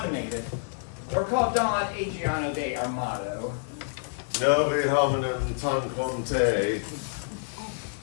or called Don Adriano de Armado. Novi hominem tanquante.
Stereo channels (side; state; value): right; silent; 59 dB below the other